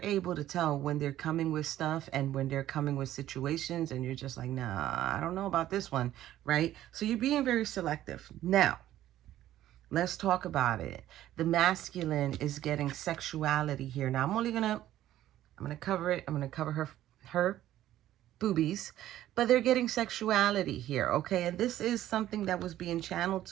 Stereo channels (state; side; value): quieter; left; 13.2 dB